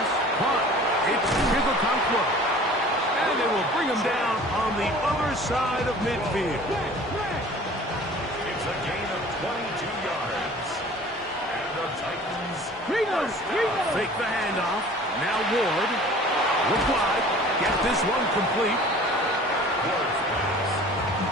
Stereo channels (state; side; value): normal; both; correlation 0.46